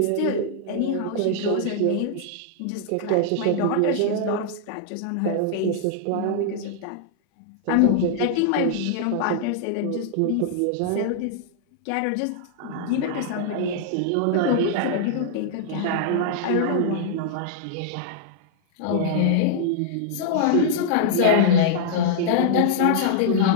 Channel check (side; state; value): both; different; correlation -0.01